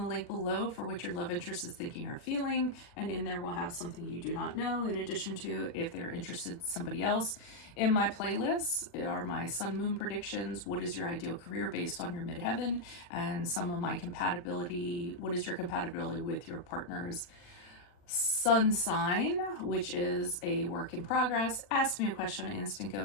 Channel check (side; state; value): right; late; 40 ms